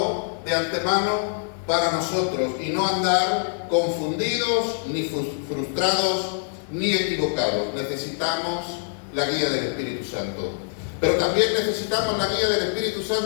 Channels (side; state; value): right; silent; digital silence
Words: de antemano para nosotros, y no andar confundidos, ni frustrados, ni equivocados. Necesitamos la guía del Espíritu Santo. Pero también necesitamos la guía del Espíritu